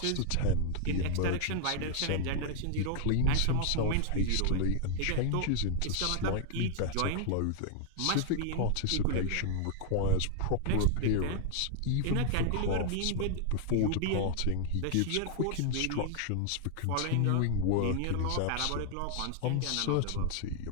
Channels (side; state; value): both; different; correlation 0.00